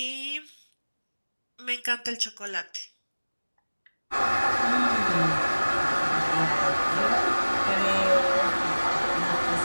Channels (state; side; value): inverted; both; correlation -1.00